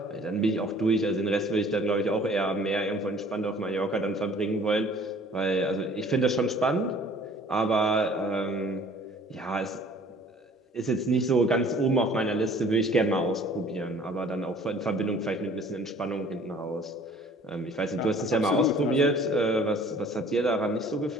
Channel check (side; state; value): both; normal; correlation 0.53